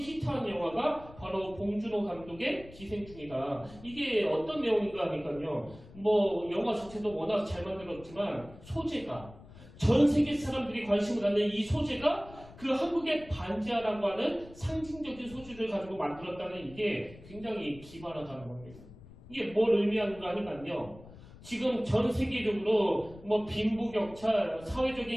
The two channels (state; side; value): noise; left; rumble, 19 dB below the sound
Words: 영화가 바로 봉준호 감독의 기생충이다. 이게 어떤 내용인가 하니까요. 뭐 영화 자체도 워낙 잘 만들었지만 소재가 전 세계 사람들이 관심을 갖는 이 소재가 그 한국의 반지하라고 하는 상징적인 소재를 가지고 만들었다는 이게 굉장히 기발하다는 겁니다. 이게 뭘 의미하는가 하니까요. 지금 전 세계적으로 뭐 빈부격차,